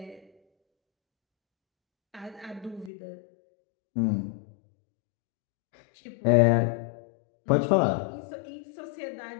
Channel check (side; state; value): right; drops out; at 2.9 s